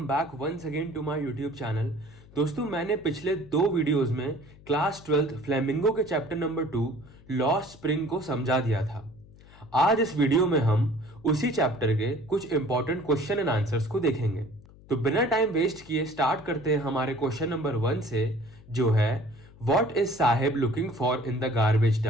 back once again to my YouTube channel. दोस्तों, मैंने पिछले दो वीडियोस में क्लास 12th फ्लेमिंगो के चैप्टर नंबर 2 लॉस्ट स्प्रिंग को समझा दिया था। आज इस वीडियो में हम उसी चैप्टर के कुछ इंपॉर्टेंट क्वेश्चन एंड आंसर्स को देखेंगे। तो बिना टाइम वेस्ट किए स्टार्ट करते हैं हमारे क्वेश्चन नंबर 1 से, जो है what is Saheb looking for in the garbage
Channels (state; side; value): noise; left; hum, 23 dB below the sound